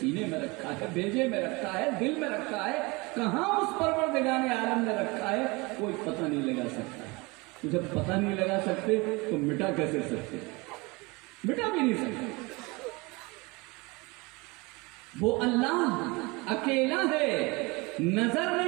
میں رکھا ہے، بھیجے میں رکھا ہے، دل میں رکھا ہے، کہاں اس پروردگار عالم نے رکھا ہے کوئی پتہ نہیں لگا سکتا. جب پتہ نہیں لگا سکتے تو مٹا کیسے سکتے؟ مٹا بھی نہیں سکتے. وہ اللہ اکیلا ہے، نظر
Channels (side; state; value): left; quieter; 25.6 dB